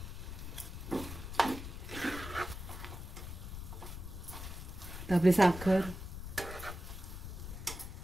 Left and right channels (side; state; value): left; noise; rumble, 8 dB below the sound